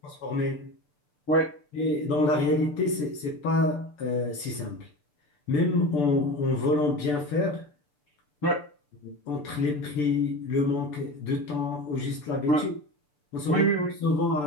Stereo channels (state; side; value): late; right; 6.8 ms